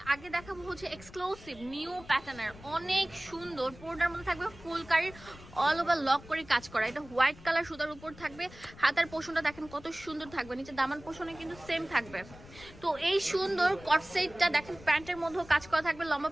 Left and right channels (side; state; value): left; noise; rumble, 19 dB below the sound